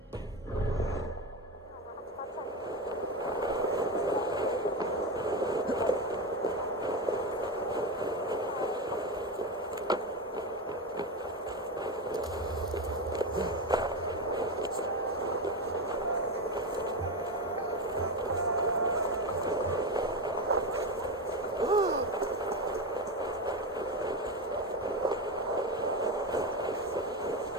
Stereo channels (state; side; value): normal; both; correlation 0.17